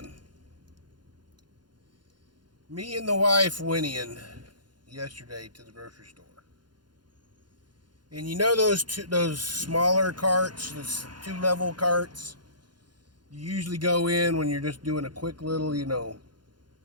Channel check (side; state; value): left; late; 0.71 ms